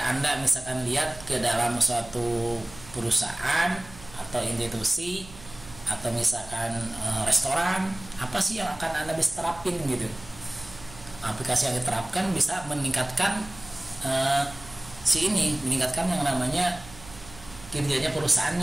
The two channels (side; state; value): right; noise; hum, 19 dB below the sound